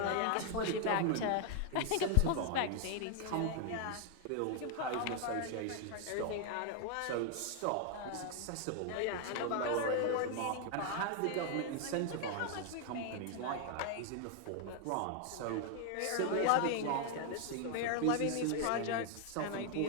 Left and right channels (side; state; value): both; different; correlation 0.00